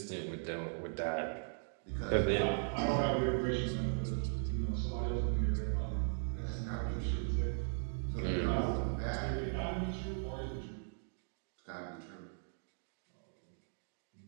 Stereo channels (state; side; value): silent; left; digital silence